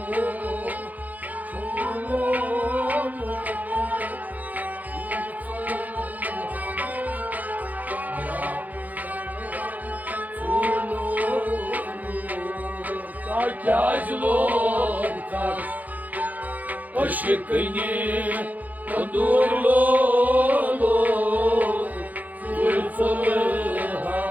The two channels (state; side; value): late; left; 0.080 ms